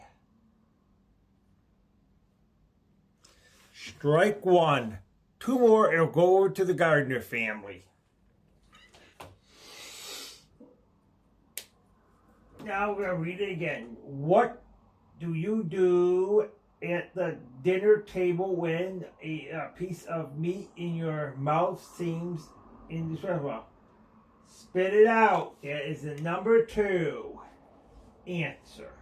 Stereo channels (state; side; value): identical; both; correlation 1.00